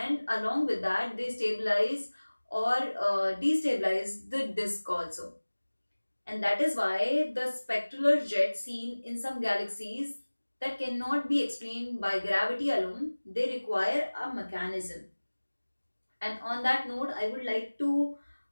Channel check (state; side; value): inverted; both; correlation -1.00